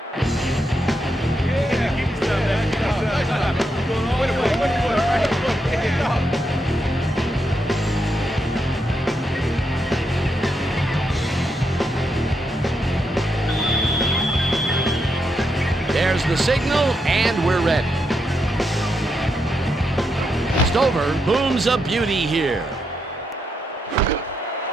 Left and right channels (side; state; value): both; normal; correlation 0.82